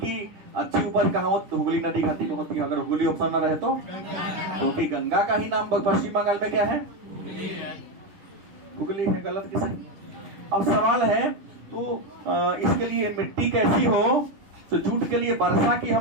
अच्छी उपज कहाँ होती? तो हुगली नदी घाटी में होती है। अगर हुगली ऑप्शन ना रहे तो क्योंकि गंगा का ही नाम पश्चिम बंगाल में क्या है? हुगली है। गलत की सही? अब सवाल है तो इसके लिए मिट्टी कैसी हो? तो जूट के लिए वर्षा की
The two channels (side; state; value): left; late; 11 ms